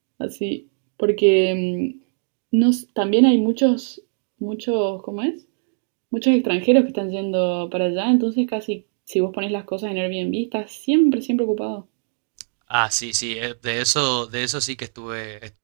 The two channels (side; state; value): left; silent; 64 dB below the other